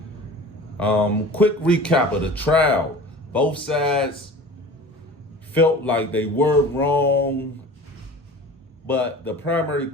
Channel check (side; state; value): both; normal; correlation 0.39